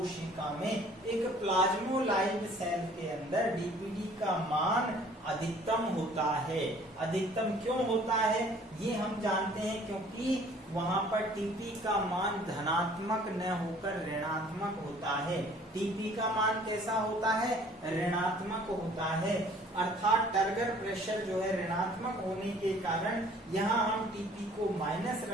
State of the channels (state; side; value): normal; both; correlation 0.54